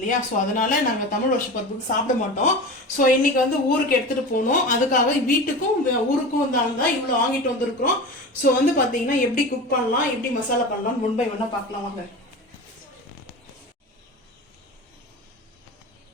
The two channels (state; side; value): normal; both; correlation 0.30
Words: ஸோ அதனால நாங்க தமிழ் வருஷப்பருப்புக்கு சாப்பிட மாட்டோம். ஸோ இன்னைக்கு வந்து ஊருக்கு எடுத்துட்டு போனோம். அதுக்காக வீட்டுக்கும் ஊருக்கும் தான் இவ்வளவு வாங்கிட்டு வந்திருக்கிறோம். ஸோ வந்து பாத்தீங்கன்னா எப்படி குக் பண்ணலாம், எப்படி மசாலா பண்ணலாம், முன்பை வேணா பார்க்கலாம் வாங்க.